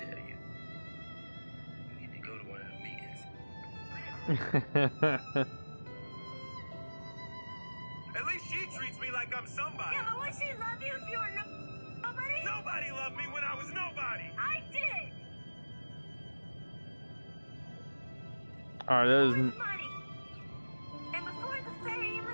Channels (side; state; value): both; inverted; correlation -1.00